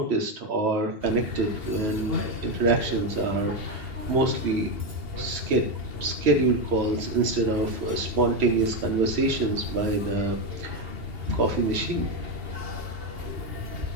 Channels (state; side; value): late; left; 2.8 ms